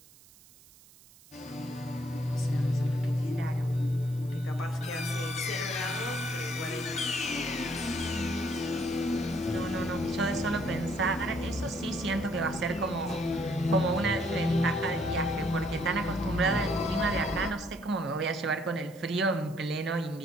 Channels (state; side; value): noise; right; hiss, 24 dB below the sound